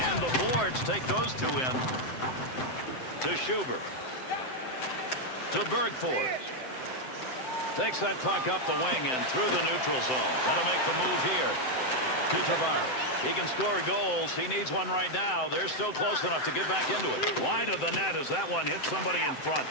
And the boards take those two in. To Schubert. To Bergford. Takes that puck up the wing and through the neutral zone. Got to make the move here. To Tavares. He can score goals. He needs one right now. They're still close enough to get back into it. Wide of the net as that one hits somebody in front.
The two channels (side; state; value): right; late; 7.8 ms